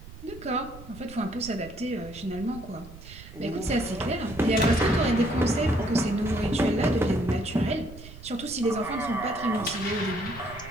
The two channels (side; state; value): right; noise; rumble, 16 dB below the sound